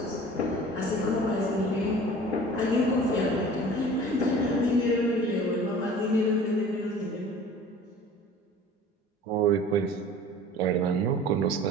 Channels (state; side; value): normal; both; correlation 0.44